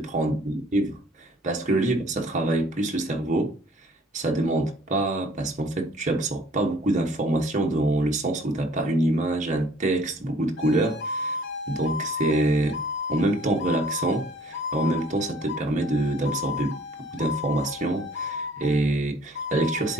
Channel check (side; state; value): both; normal; correlation 0.56